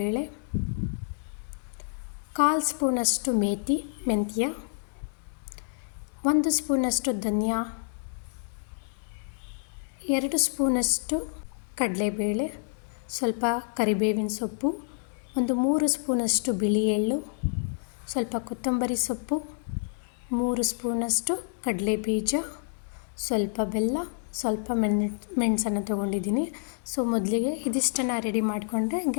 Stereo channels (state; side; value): silent; right; digital silence